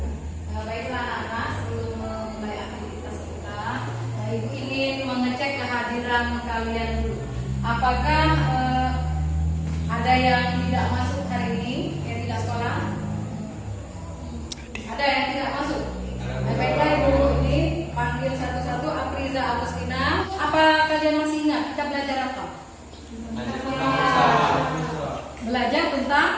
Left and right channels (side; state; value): both; identical; correlation 1.00